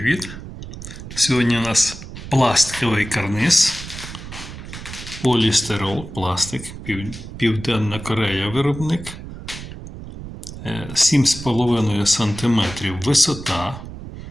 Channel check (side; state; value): right; noise; rumble, 12 dB below the sound